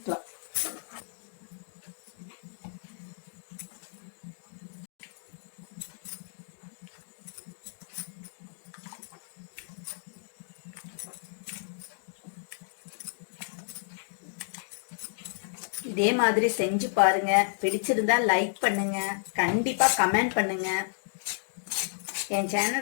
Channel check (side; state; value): right; silent; digital silence